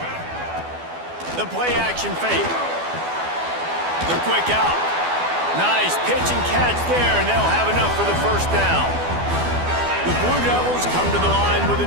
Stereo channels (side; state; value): left; late; 12 ms